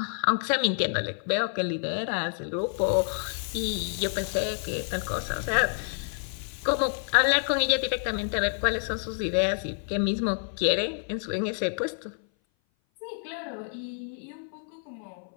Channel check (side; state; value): right; silent; 57 dB below the other